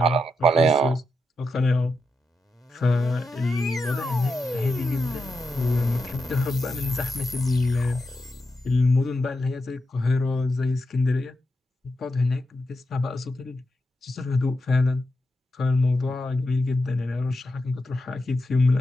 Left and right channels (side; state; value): both; normal; correlation 0.86